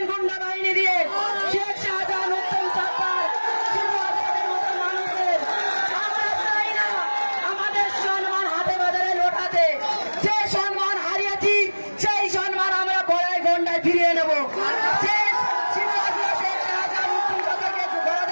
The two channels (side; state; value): both; inverted; correlation -1.00